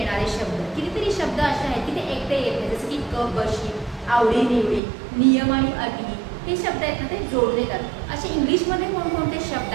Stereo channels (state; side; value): drops out; left; at 4.8 s